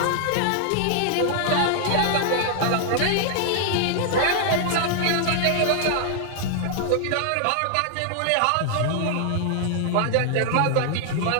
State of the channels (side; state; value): both; different; correlation -0.01